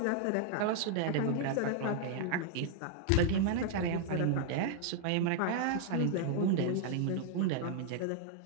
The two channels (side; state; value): both; different; correlation 0.00